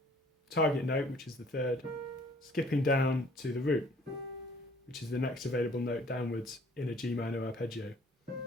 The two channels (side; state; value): both; normal; correlation 0.56